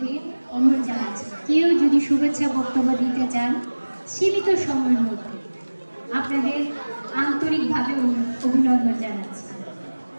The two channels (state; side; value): inverted; both; correlation -1.00